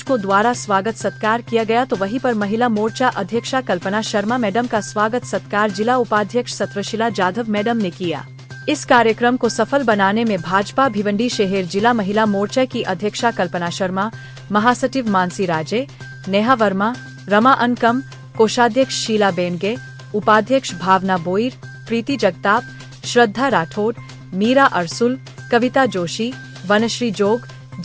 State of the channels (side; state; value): both; identical; correlation 1.00